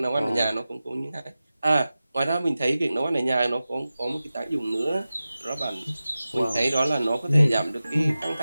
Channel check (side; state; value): both; inverted; correlation -0.95